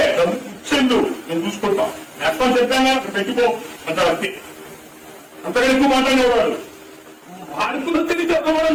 డబ్బు ఇచ్చేందు నేను చూసుకుంటాం ఎక్కడ చెప్పాను అక్కడ పెట్టుకో అంటారు అంతే. అంతగా ఎక్కువ మాట్లాడేవాడు వాడుకున్న తిరిగి చెప్పడం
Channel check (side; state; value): both; identical; correlation 1.00